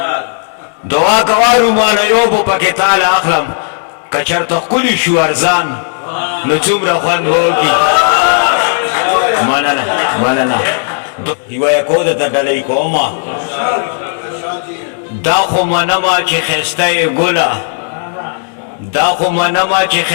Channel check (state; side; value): silent; right; digital silence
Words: دعا کوارو مانا یو پو پاکی تال اخلم کچر تا کلی شو ارزان نو چومره خوند بوکی مننه یو یکو ده تا ڈلی کوما دا خو منما چی خسته گلا دا خو منما چی